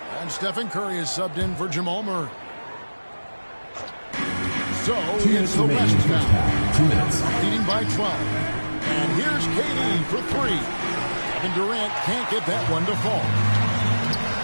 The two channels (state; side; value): inverted; both; correlation -1.00